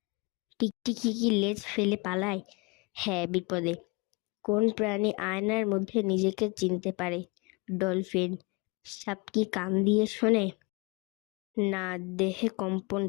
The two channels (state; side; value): quieter; right; 28.4 dB